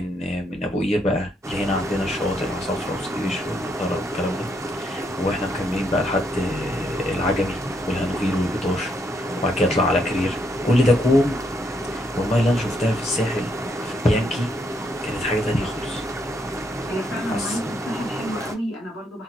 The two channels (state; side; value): normal; both; correlation 0.75